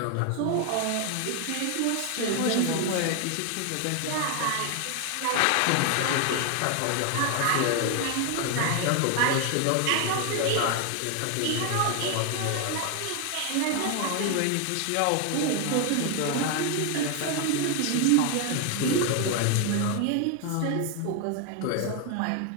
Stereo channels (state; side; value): different; both; correlation 0.01